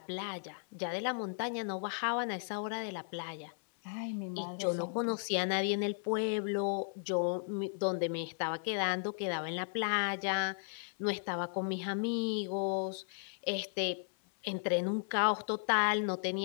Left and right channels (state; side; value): silent; right; 54 dB below the other